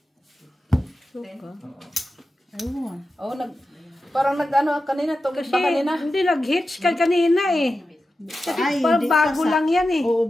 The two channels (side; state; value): both; normal; correlation 0.92